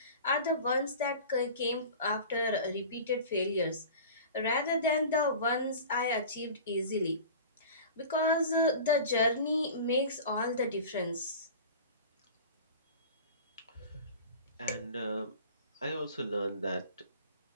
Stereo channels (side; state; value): both; inverted; correlation -0.38